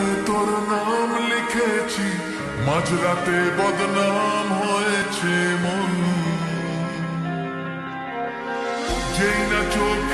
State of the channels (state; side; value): identical; both; correlation 1.00